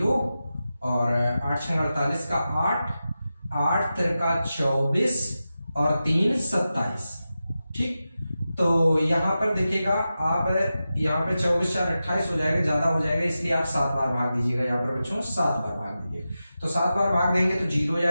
और 8 6 48 का 8, 8 तिरका 24 और 3 27, ठीक। तो यहाँ पर देखिएगा आप यहाँ पे 24 4 28 हो जाएगा, ज्यादा हो जाएगा इसलिए आप 7 बार भाग दीजिएगा। यहाँ पर बच्चों 7 बार भाग दीजिए। तो 7 बार भाग देंगे तो 0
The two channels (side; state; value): both; inverted; correlation -0.92